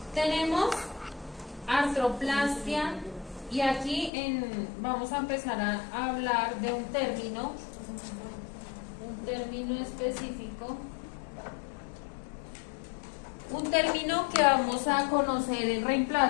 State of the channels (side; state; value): right; drops out; at 4.1 s